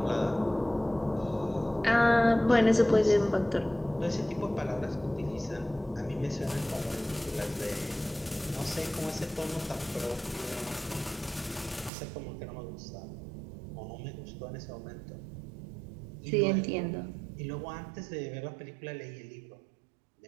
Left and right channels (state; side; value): drops out; left; at 11.9 s